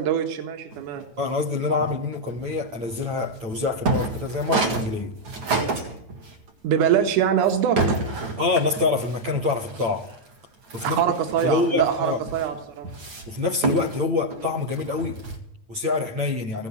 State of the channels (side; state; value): left; late; 8.9 ms